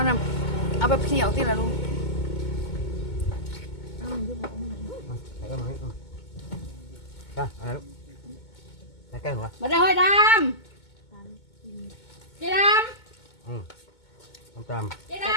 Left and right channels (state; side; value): late; right; 2.2 ms